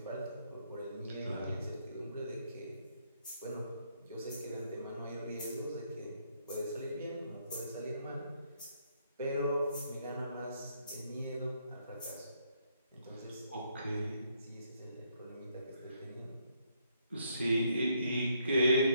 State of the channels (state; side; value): inverted; both; correlation -0.72